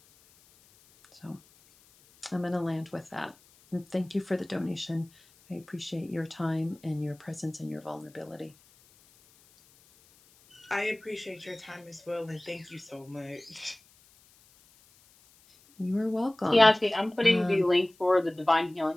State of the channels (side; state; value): left; noise; hiss, 29 dB below the sound